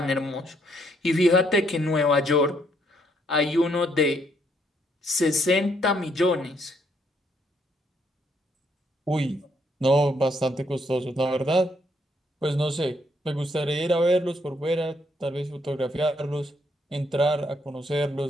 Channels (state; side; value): normal; both; correlation 0.71